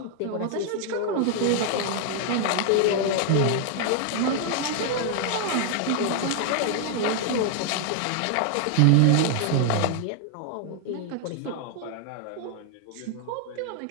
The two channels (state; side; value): different; both; correlation 0.00